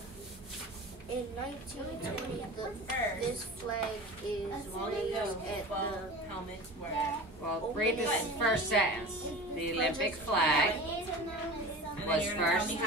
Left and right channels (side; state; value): both; normal; correlation 0.35